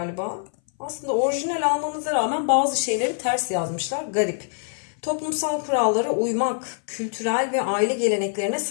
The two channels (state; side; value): silent; right; 59 dB below the other